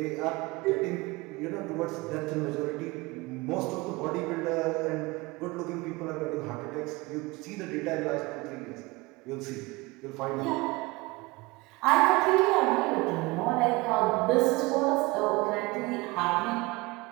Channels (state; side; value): quieter; left; 23.4 dB